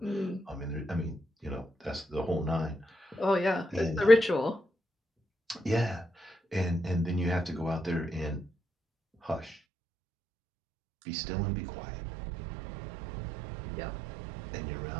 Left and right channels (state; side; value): drops out; left; at 9.6 s